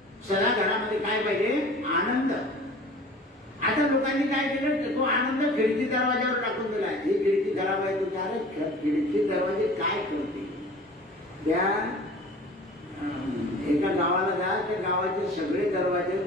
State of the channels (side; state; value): both; normal; correlation 0.44